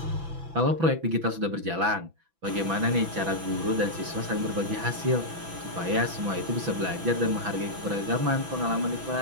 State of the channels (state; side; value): late; left; 6.0 ms